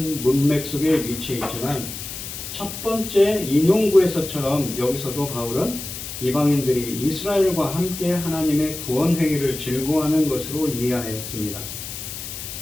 문맥 속에 위치해 있지만 첫 번째 인용구에서처럼 여기서도 바울은 이방인들이 이스라엘과 함께 하나님의 구원 행위를 즐거워하는 것으로 이해하였습니다.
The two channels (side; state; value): left; noise; hiss, 9 dB below the sound